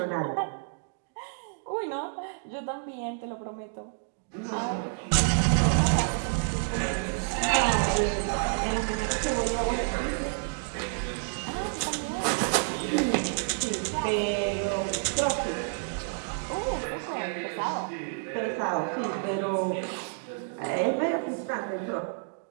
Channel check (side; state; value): left; silent; digital silence